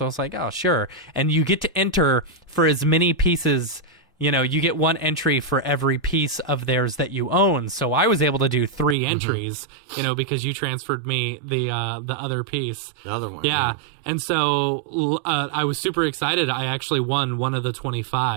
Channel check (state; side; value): drops out; left; at 9.0 s